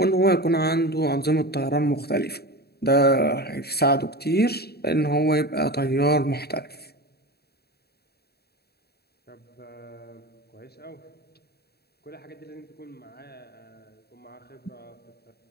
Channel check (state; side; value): late; right; 0.47 ms